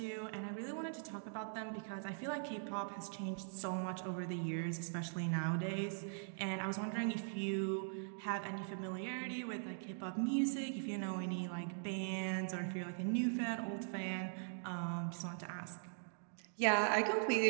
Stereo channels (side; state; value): left; silent; digital silence